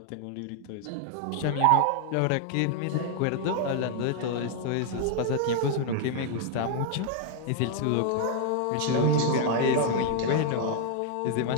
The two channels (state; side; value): different; both; correlation 0.00